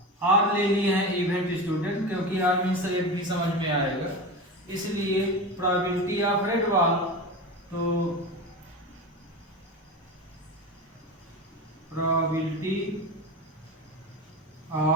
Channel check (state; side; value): normal; both; correlation 0.25